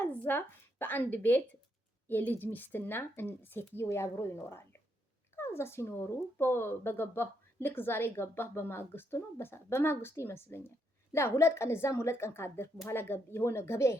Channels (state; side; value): normal; both; correlation 0.77